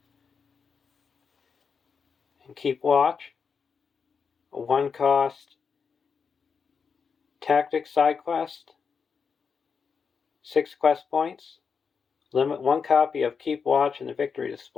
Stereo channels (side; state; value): right; quieter; 5.9 dB